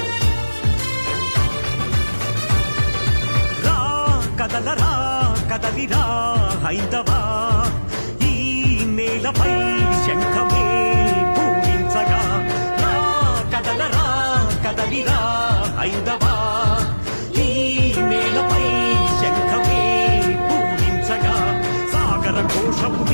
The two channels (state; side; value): inverted; both; correlation -1.00